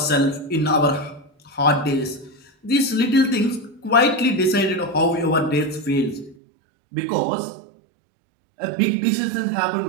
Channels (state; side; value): drops out; left; at 6.4 s